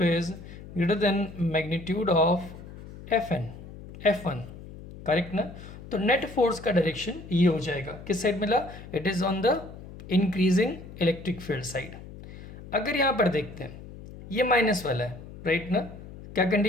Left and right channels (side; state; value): left; noise; hum, 15 dB below the sound